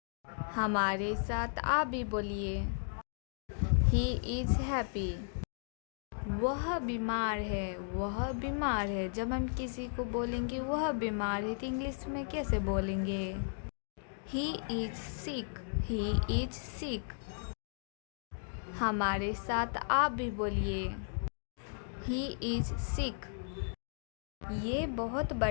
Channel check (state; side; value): silent; right; digital silence